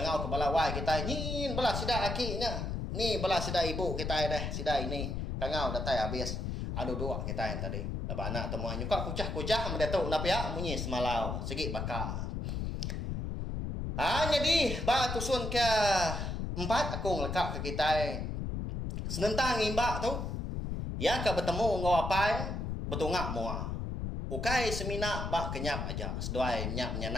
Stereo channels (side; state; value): left; noise; rumble, 3 dB below the sound